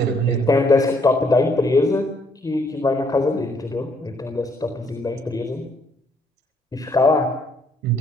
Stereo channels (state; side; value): normal; both; correlation 0.68